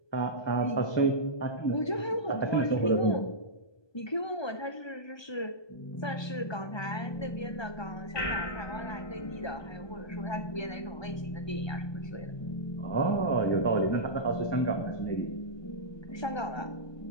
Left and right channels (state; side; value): late; right; 1.3 ms